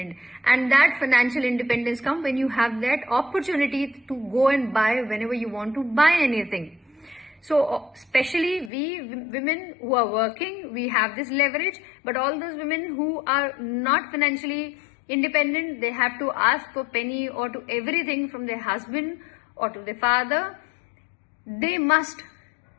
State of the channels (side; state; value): right; drops out; at 8.7 s